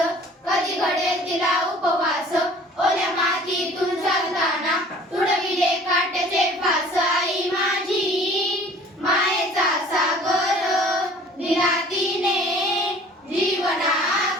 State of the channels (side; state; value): both; normal; correlation 0.49